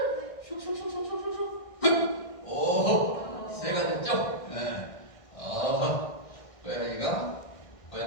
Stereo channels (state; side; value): late; right; 1.6 ms